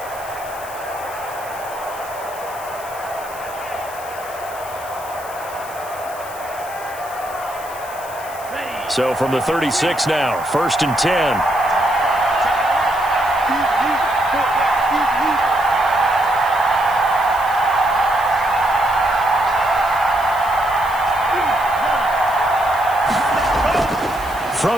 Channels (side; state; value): left; noise; hiss, 16 dB below the sound